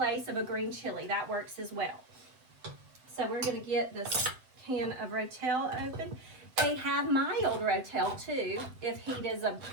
of a green chili. That works as well. So we're going to get this can of Rotel open. They have mild Rotel too, if heat is a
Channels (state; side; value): late; left; 7.9 ms